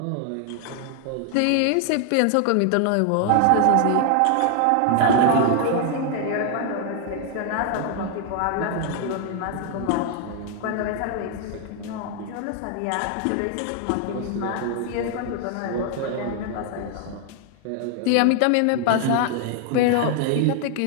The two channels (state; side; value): different; both; correlation 0.00